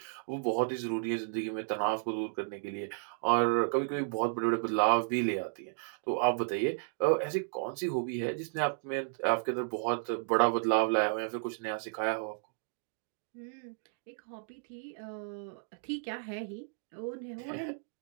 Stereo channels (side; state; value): left; silent; digital silence